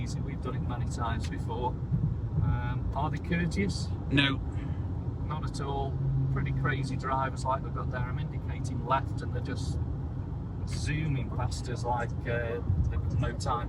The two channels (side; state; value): both; identical; correlation 1.00